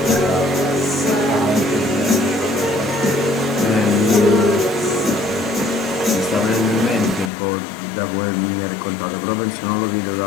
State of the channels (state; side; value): drops out; right; at 7.3 s